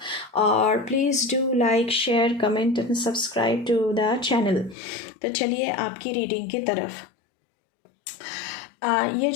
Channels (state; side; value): drops out; right; at 4.8 s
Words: और please do like, share, comment and subscribe to the channel. तो चलिए आपकी reading की तरफ। ये